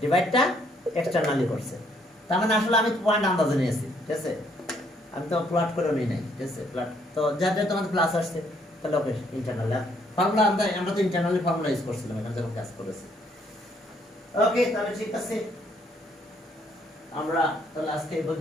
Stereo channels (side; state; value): both; normal; correlation 0.68